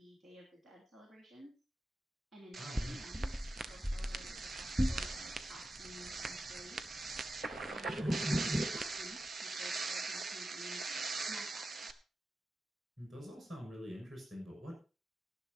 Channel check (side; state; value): both; normal; correlation 0.92